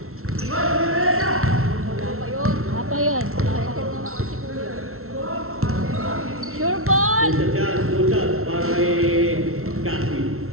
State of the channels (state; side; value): late; left; 0.62 ms